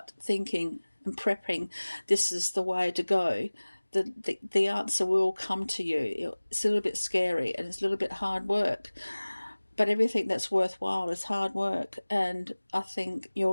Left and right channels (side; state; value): both; inverted; correlation -1.00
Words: thinking and prepping, this is the way to go. The answer will come to you. It's a little bit scary and it's a little bit hard work, but everything that's worthwhile is hard work, and I think